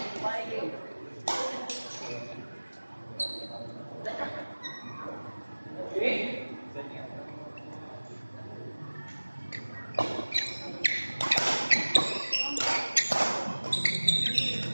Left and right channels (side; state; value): both; inverted; correlation -1.00